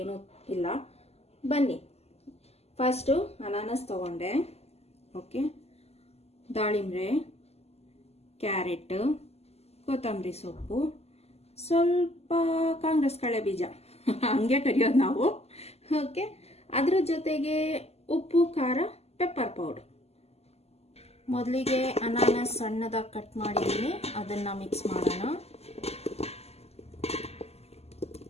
ಏನೂ ಇಲ್ಲ. ಬನ್ನಿ, ಫಸ್ಟು ಅನಾನಸ್ ತಗೊಂಡೆ. ಓಕೆ, ದಾಳಿಂಬೆ, ಕ್ಯಾರೆಟ್, ಕೊತ್ತಂಬರಿ ಸೊಪ್ಪು, ಸ್ವಲ್ಪ ಕಾಂಗ್ರೆಸ್ ಕಳೆ ಬೀಜ ಹಂಗೆ ಕರಿಯೋದು ನಾವು. ಓಕೆ, ಅದ್ರ ಜೊತೆಗೆ ಉಪ್ಪು, ಖಾರ, ಪೆಪ್ಪರ್ ಪೌಡರ್. ಮೊದಲಿಗೆ ಅನಾನಸ್ ಸಣ್ಣದಾಗಿ ಕಟ್ ಮಾಡಿದ್ದೀನಿ, ಅದನ್ನು ಮಿಕ್ಸ್ ಮಾಡೋಣ.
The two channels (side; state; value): right; late; 0.30 ms